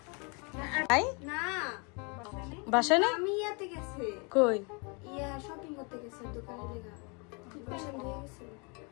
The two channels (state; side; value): quieter; right; 33.1 dB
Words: আই না, বাসায় নেই। আমি ইয়াতে গেছে। কই? ইয়া শপিং করতে গেছে দোকানে লেগা। পছন্দ হয়ে গেছে।